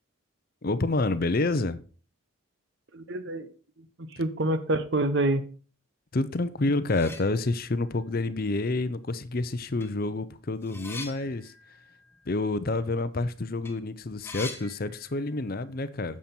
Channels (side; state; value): both; normal; correlation 0.43